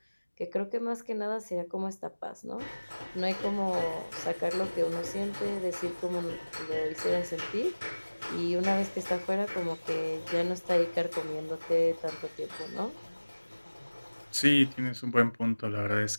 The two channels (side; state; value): both; inverted; correlation -1.00